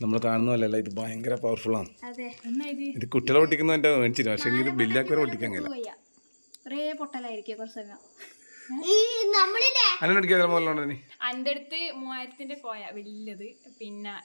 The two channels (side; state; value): both; inverted; correlation -1.00